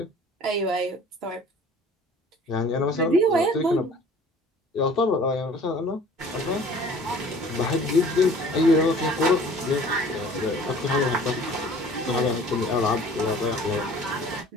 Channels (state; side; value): normal; both; correlation 0.49